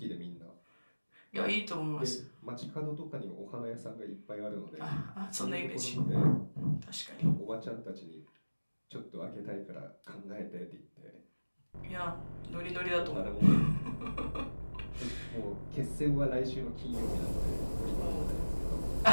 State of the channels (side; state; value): both; inverted; correlation -1.00